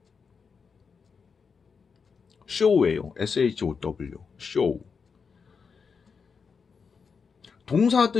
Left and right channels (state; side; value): quieter; right; 5.6 dB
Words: show예요. SHOW. show. 동사